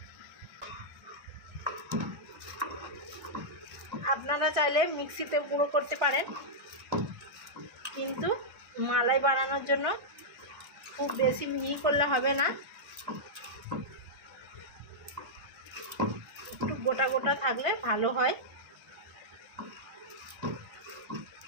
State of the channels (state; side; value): late; left; 1.5 ms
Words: আপনারা চাইলে মিক্সিতে গুঁড়ো করতে পারেন, কিন্তু মালাই বানানোর জন্য খুব বেশি মিহি করলে হবে না, একটু গোটা গোটা থাকলে ভালো হয়।